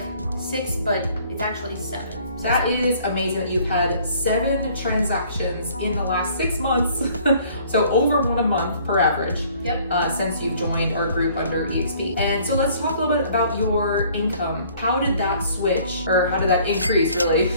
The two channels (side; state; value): both; inverted; correlation -0.57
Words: 6, but it's actually 7. That is amazing that you've had 7 transactions in the last 6 months. So over 1 a month per average. Yep. Since you've joined our group under eXp. And so let's talk a little bit about your income. How did that switch, or how did that increase really,